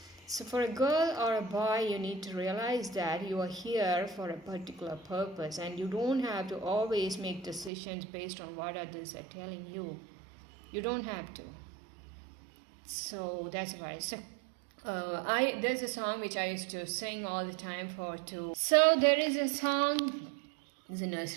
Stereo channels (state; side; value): drops out; left; at 7.7 s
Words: So for a girl or a boy, you need to realize that you are here for a particular purpose, and you don't have to always make decisions based on what others are telling you. You don't have to. So that's why. So there's a song which I used to sing all the time So there is a song. It's a